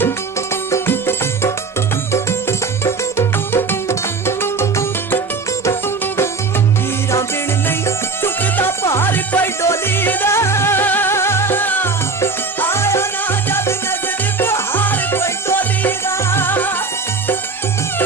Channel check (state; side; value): quieter; left; 4.3 dB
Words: कोई डोली दा आया ना जद नजर